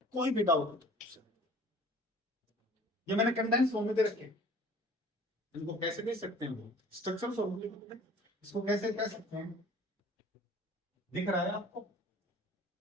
कोई भी डाउट हो। ये मैंने कंडेंस फॉर्म में दे रखे, इनको कैसे दे सकते हैं, स्ट्रक्चरल फॉर्मूले, इसको कैसे कह सकते हैं, दिख रहा है आपको,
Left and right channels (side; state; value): both; normal; correlation 0.49